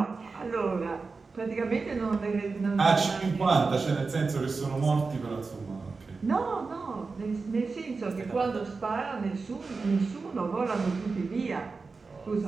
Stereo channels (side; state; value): left; quieter; 4.3 dB